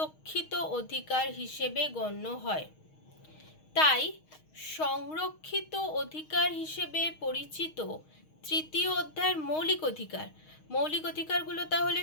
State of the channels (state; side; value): late; right; 6.4 ms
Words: অধিকার হিসেবে গণ্য হয়, তাই সংরক্ষিত অধিকার হিসেবে পরিচিত 3য় অধ্যায়ের মৌলিক অধিকারগুলো তাহলে